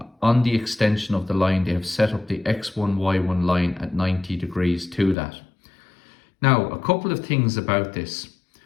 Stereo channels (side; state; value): right; drops out; at 5.2 s